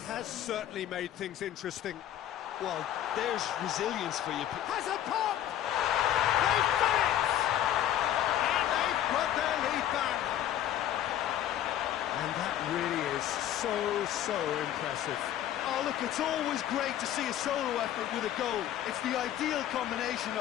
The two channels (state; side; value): quieter; right; 11.7 dB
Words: has certainly made things interesting. Well, there's resilience for you. Has a pop! They've done it! And they've put their lead back. And that really is so impressive. Oh, look, it's always great to see a solo effort with a goal. It's the ideal combination